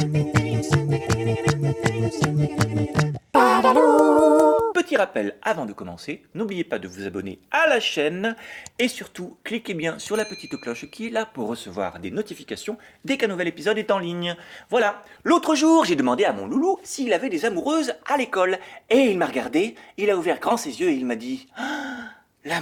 Petit rappel avant de commencer, n'oubliez pas de vous abonner à la chaîne et surtout cliquez bien sur la petite cloche qui est là pour recevoir des notifications dès qu'un nouvel épisode est en ligne. Voilà, l'autre jour j'ai demandé à mon loulou s'il avait des amoureuses à l'école et il m'a regardé, il a ouvert grand ses yeux et il m'a dit ah,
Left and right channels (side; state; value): both; identical; correlation 1.00